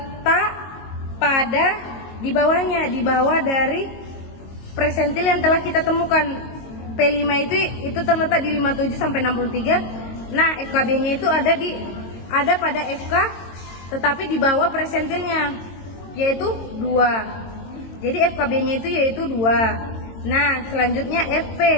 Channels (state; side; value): late; right; 22 ms